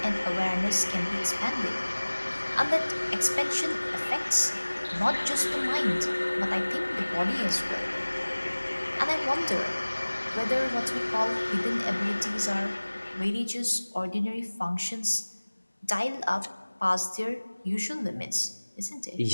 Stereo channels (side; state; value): both; inverted; correlation -1.00